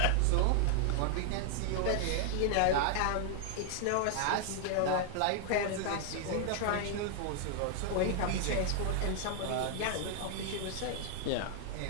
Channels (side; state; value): both; different; correlation 0.00